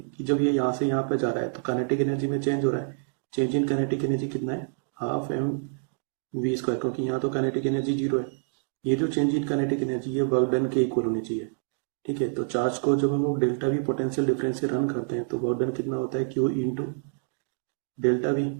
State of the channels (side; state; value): left; silent; digital silence